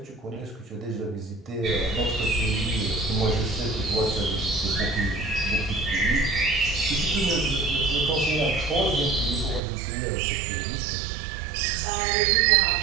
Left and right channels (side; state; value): left; drops out; at 9.6 s